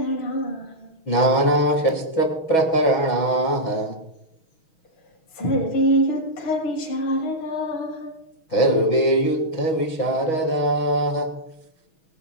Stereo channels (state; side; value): late; right; 6.3 ms